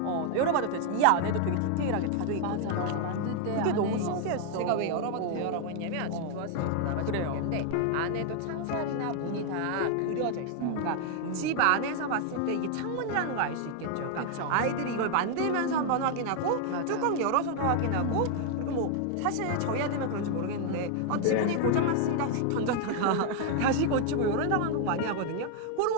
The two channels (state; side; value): different; both; correlation 0.00